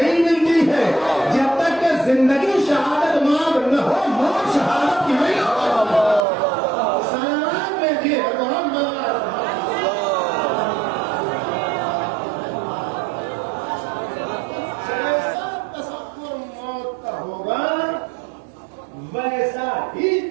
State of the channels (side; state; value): left; drops out; at 6.2 s